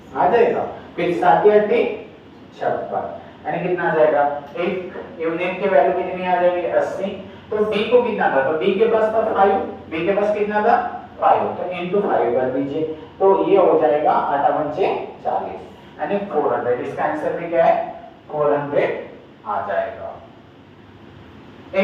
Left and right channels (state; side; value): identical; both; correlation 1.00